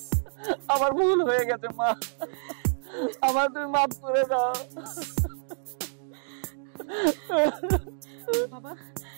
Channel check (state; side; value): silent; left; digital silence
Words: আমার ভুল হয়ে গেছে মা, আমার তুমি মাফ করে দাও। বাবা,